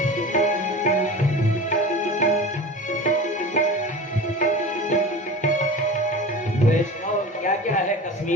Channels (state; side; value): normal; both; correlation 0.34